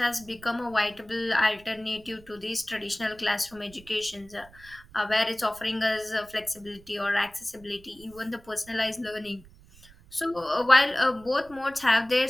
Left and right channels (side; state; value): right; noise; rumble, 23 dB below the sound